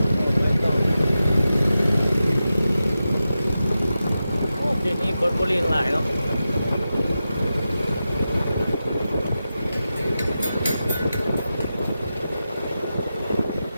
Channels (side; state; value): both; inverted; correlation -0.91